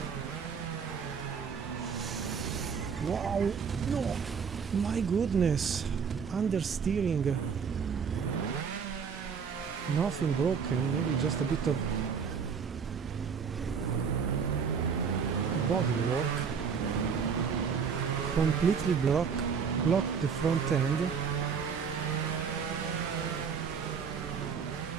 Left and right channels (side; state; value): left; quieter; 6.4 dB